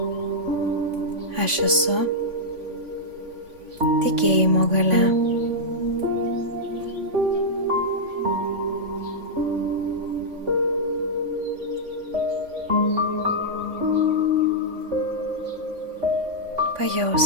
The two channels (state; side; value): late; left; 3.5 ms